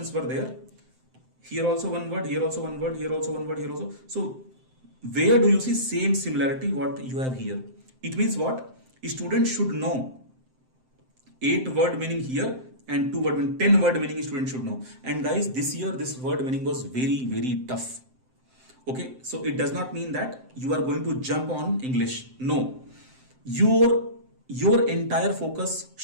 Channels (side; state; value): left; late; 7.7 ms